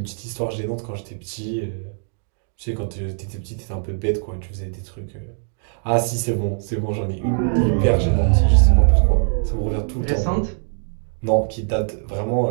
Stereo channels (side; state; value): left; silent; digital silence